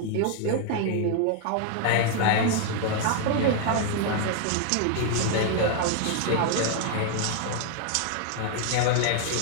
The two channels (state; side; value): different; both; correlation 0.00